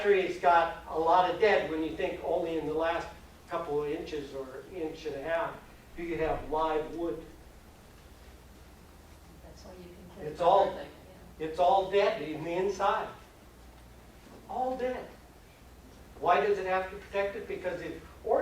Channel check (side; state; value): both; identical; correlation 1.00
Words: tree's got a lot of dead when you think only in the last couple of inches or inch and a half do you have live wood. That's why you can clear. It's all- everything, yeah. It's all dead in the inside. All dead. Why does it have to protect it? Because if